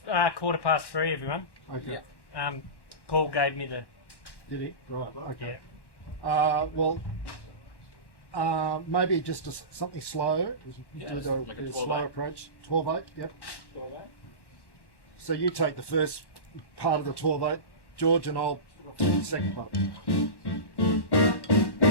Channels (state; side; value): late; right; 1.1 ms